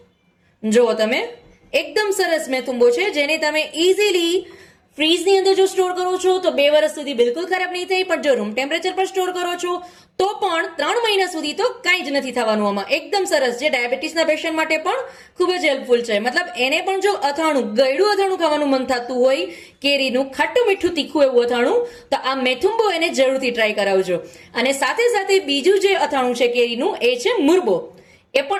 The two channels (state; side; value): identical; both; correlation 1.00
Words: જુઓ તમે, એકદમ સરસ મેથુંબો છે જેને તમે ઇઝીલી ફ્રીજની અંદર જો સ્ટોર કરો છો તો 2 વર્ષ સુધી બિલકુલ ખરાબ નહીં થાય, પણ જો રૂમ ટેમ્પરેચર પર સ્ટોર કરો છો તો પણ 3 મહિના સુધી તો કાંઈ જ નથી થવાનું. આમાં એકદમ સરસ, જે ડાયાબિટીસના પેશન્ટ માટે પણ ખૂબ જ હેલ્પફુલ છે. મતલબ એને પણ જો અથાણું, ગળ્યું અથાણું ખાવાનું મન થતું હોય, કેરીનું ખાટું મીઠું તીખું એવું અથાણું, તો આ મેથુંબો એને જરૂરથી ટ્રાય કરાવજો. અને સાથે સાથે બીજું જે અથાણું છે કેરીનું એ છે મુરબો. એ